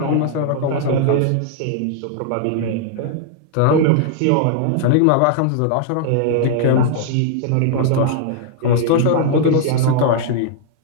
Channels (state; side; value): different; both; correlation -0.01